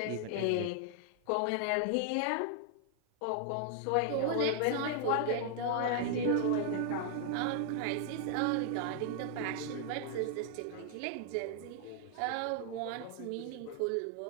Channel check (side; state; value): both; different; correlation 0.00